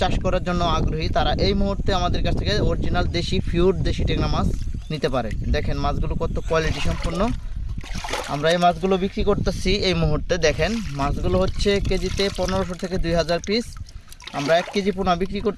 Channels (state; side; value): identical; both; correlation 1.00